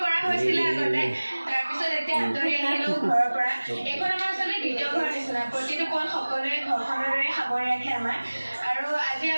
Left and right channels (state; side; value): inverted; both; correlation -1.00